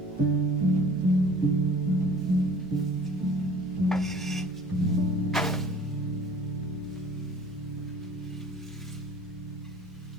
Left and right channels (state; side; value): noise; right; rumble, 26 dB below the sound